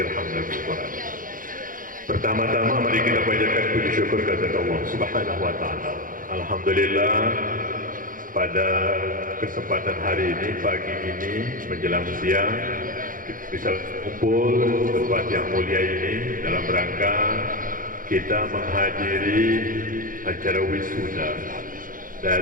Irhamna bil Quran. Pertama-tama mari kita panjatkan puji syukur kepada Allah Subhanahu wa taala. Alhamdulillah pada kesempatan hari ini, pagi ini menjelang siang, kita bisa kumpul di tempat yang mulia ini dalam rangka kita menghadiri acara wisuda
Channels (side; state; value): left; late; 0.40 ms